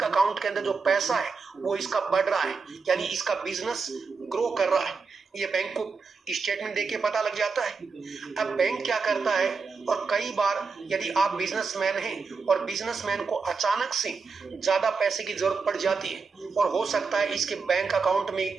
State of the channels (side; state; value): left; quieter; 4.8 dB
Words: अकाउंट के अंदर जो पैसा है वो इसका बढ़ रहा है, यानी इसका बिजनेस ग्रो कर रहा है। ये बैंक को स्टेटमेंट देके पता लग जाता है। अब बैंक क्या करता है, और कई बार यदि आप बिजनेसमैन हैं और बिजनेसमैन को अचानक से ज्यादा पैसे की जरूरत पड़ जाती है और हो सकता है इसके बैंक अकाउंट